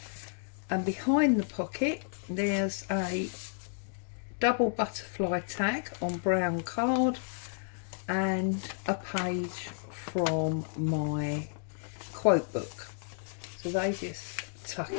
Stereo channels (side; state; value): right; silent; digital silence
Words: And behind the pocket, there's a double butterfly tag on brown card and a page from my quote book. So they just tuck